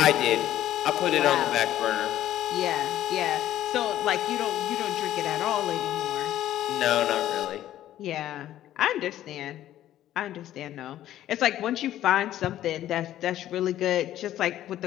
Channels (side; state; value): right; quieter; 12.8 dB